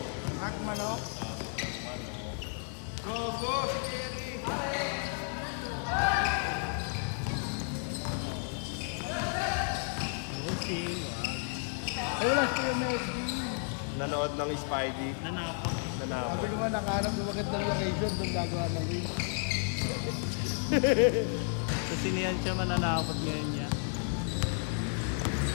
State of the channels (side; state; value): right; silent; 56 dB below the other